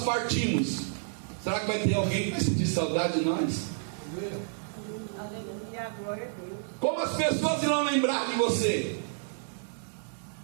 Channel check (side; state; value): left; silent; 58 dB below the other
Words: partimos, será que vai ter alguém que vai sentir saudade de nós? Aleluia, glória a Deus. Como as pessoas irão lembrar de você?